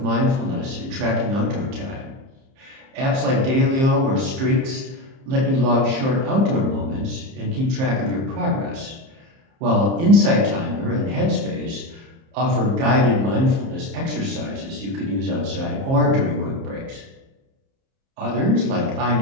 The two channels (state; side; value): late; left; 30 ms